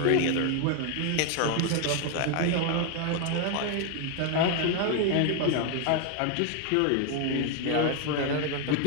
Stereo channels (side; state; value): both; different; correlation 0.01